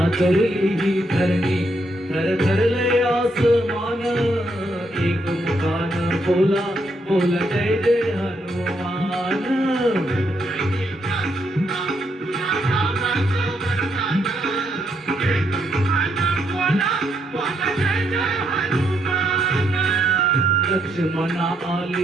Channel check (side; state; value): both; normal; correlation 0.76